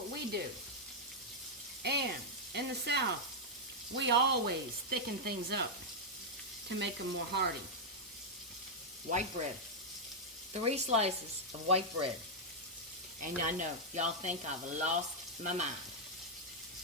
we do. And in the South, we always thicken things up to make them more hearty. White bread. 3 slices of white bread. And I know, y'all think I've lost my mind.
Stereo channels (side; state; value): both; normal; correlation -0.03